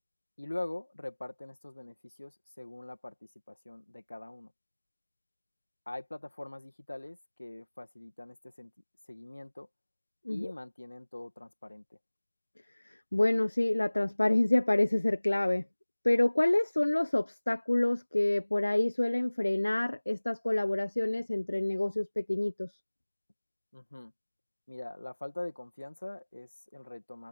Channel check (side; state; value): both; inverted; correlation -1.00